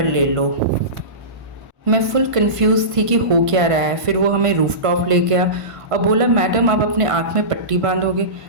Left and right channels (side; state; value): left; late; 1.5 ms